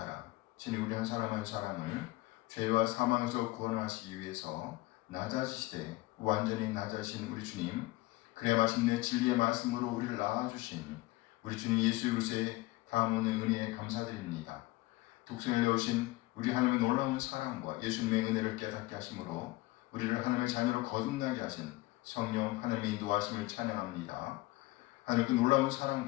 친히 우리 한 사람 한 사람을 죄와 사망에서 구원하시기 위해서 낮아지시되 완전히 낮아진 우리 주님, 그래 마침내 진리의 말씀으로 우리를 낳아주신 우리 주님 예수 그리스도의 다함없는 은혜에 감사드립니다. 독생을 내오신 우리 하나님의 놀라운 사랑과 예수님의 은혜를 깨닫게 하심으로 우리를 하나님의 자녀로 거듭나게 하신 성령 하나님의 인도하심을 찬양합니다. 하나님 그 놀라운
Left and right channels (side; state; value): right; quieter; 20.0 dB